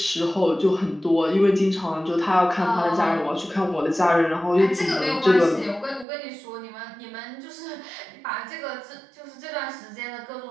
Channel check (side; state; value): left; drops out; at 6.1 s